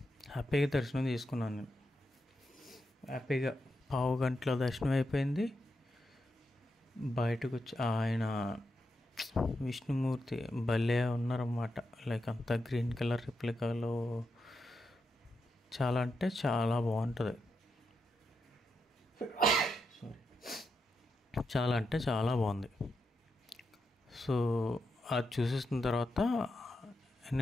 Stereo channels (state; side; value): normal; both; correlation 0.85